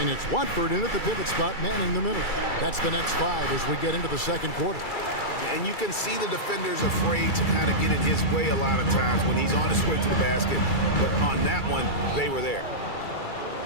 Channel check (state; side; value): late; right; 2.3 ms